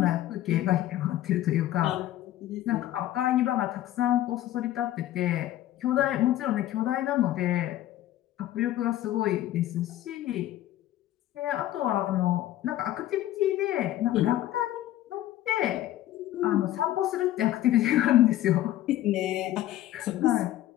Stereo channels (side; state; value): right; quieter; 13.8 dB